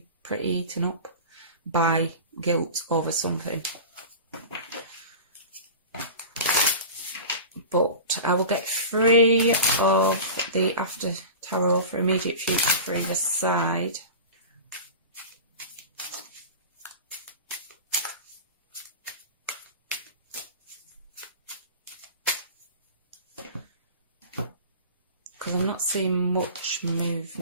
pretty eaten up by guilt over something. But I will get 3 of the After Tarot for immediate future for either side. Because I'm not seeing much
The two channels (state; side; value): inverted; both; correlation -0.32